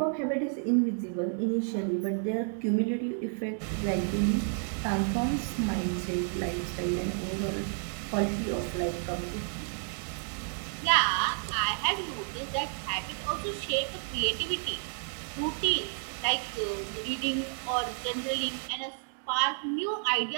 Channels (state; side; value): silent; left; 57 dB below the other